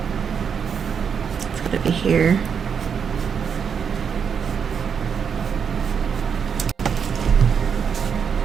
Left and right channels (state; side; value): quieter; left; 6.9 dB